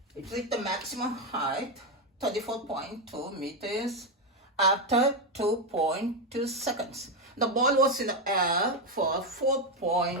It reached the maximum height, 34.2 meters, after 2.2 seconds. The ball was in the air for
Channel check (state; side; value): normal; both; correlation 0.07